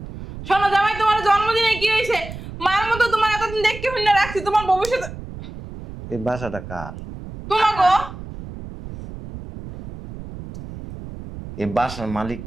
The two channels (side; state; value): right; noise; rumble, 12 dB below the sound